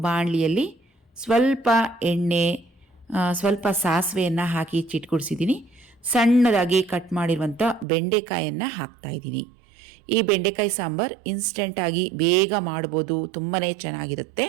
ಬಾಣಲಿಯಲ್ಲಿ ಸ್ವಲ್ಪ ಎಣ್ಣೆ, ಸ್ವಲ್ಪ ಸಾಸಿವೆಯನ್ನು ಹಾಕಿ ಚಿಟ್ಕುಡಿಸಿದ್ದೀನಿ. ಸಣ್ಣದಾಗಿ ಕಟ್ ಮಾಡಿರುವಂಥ ಬೆಂಡೆಕಾಯನ್ನು ಹಾಕ್ತಾಯಿದ್ದೀನಿ. ಈ ಬೆಂಡೆಕಾಯಿ ಸಾಂಬಾರು ಇನ್ಸ್ಟೆಂಟಾಗಿ ಬೇಗ ಮಾಡ್ಬೋದು, ತುಂಬಾ ಚೆನ್ನಾಗಿರುತ್ತೆ.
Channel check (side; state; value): left; drops out; at 7.9 s